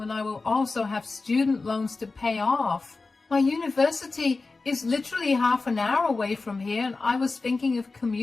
I will also have student loans to pay off. My university is literally half an hour away from here, and I was thinking of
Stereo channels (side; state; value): right; quieter; 3.8 dB